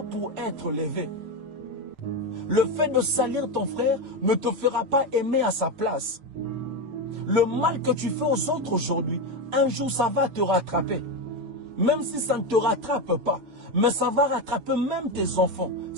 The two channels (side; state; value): left; late; 6.8 ms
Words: pour être levé. Le fait de salir ton frère ne te fera pas aimer à sa place. Le mal que tu fais aux autres aujourd'hui, un jour ça va te rattraper. Même si ça ne te rattrape pas, mais ça va rattraper même tes enfants.